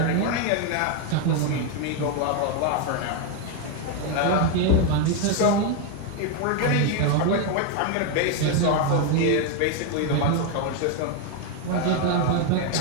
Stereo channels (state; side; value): different; both; correlation 0.01